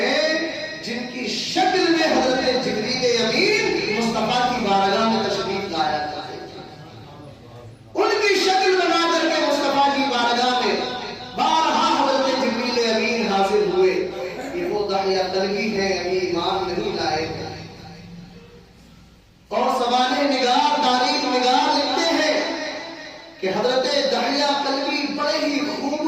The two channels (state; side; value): identical; both; correlation 1.00